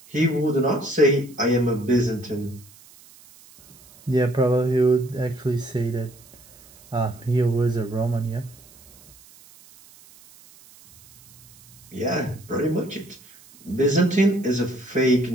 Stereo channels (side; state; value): right; noise; hiss, 25 dB below the sound